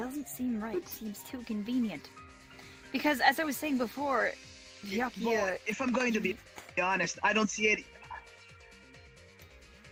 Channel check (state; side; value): identical; both; correlation 1.00